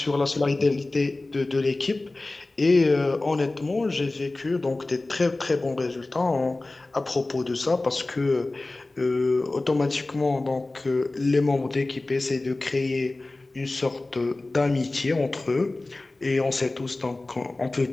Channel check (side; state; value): right; quieter; 3.0 dB